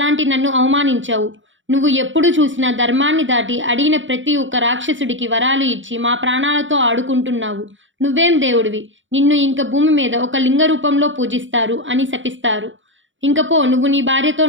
నన్ను అవమానించావు. నువ్వు ఎప్పుడు చూసినా ధర్మాన్ని దాటి అడిగిన ప్రతి ఒక్క రాక్షసుడికి వరాలు ఇచ్చి మా ప్రాణాలతో ఆడుకుంటున్నావు. నువ్వేం దేవుడివి, నిన్ను ఇంక భూమి మీద ఒక లింగ రూపంలో పూజిస్తారు అని శపిస్తారు. ఇంకపో నువ్వు నీ భార్యతో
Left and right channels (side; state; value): left; late; 0.56 ms